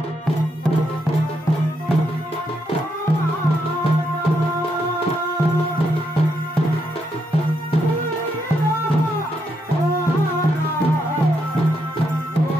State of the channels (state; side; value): normal; both; correlation 0.79